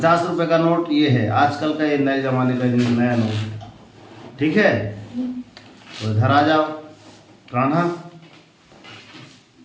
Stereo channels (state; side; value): identical; both; correlation 1.00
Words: रुपए का नोट ये है, आजकल का ये नए जमाने का नया नोट। ठीक है, तो इधर आ जाओ कान्हा।